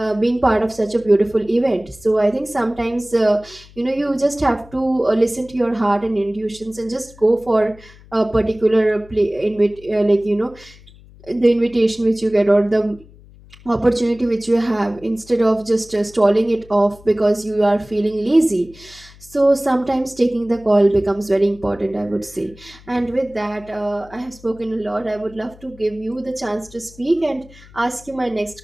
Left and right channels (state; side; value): noise; left; hum, 23 dB below the sound